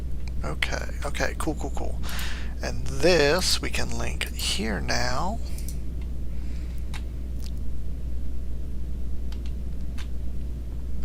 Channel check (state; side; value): identical; both; correlation 1.00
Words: Okay, cool. And this we can link here now.